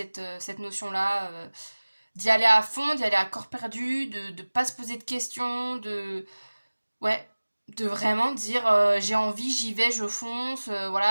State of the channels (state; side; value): inverted; both; correlation -1.00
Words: notion-là d'y aller à fond, d'y aller à corps perdu, de pas se poser de questions, ouais, de vraiment dire j'ai envie, j'y vais, je fonce,